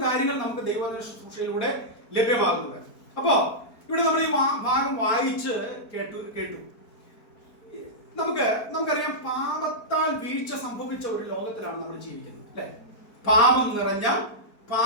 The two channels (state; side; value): late; right; 4.4 ms